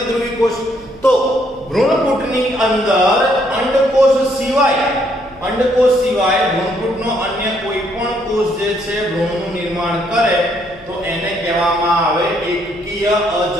કોષ। તો ભ્રૂણકૂટની અંદર અંડકોષ સિવાય ભ્રૂણકૂટનો અન્ય કોઈ પણ કોષ જે છે ભ્રૂણનું નિર્માણ કરે તો એને કહેવામાં આવે એકકીય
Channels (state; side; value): noise; right; hum, 24 dB below the sound